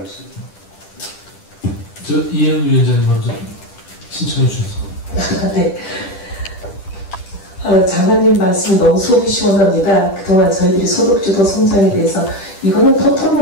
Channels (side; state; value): right; late; 10 ms